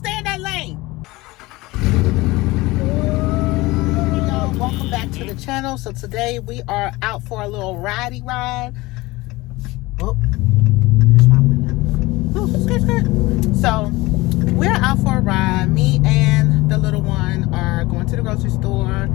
in that lane. Hey y'all, welcome back to the channel. So today we are out for a little ridey ride. Oh, there's my window. Oh, skirt. So we're out for a ride. Me and the little one are going to the grocery store.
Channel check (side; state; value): right; quieter; 20.9 dB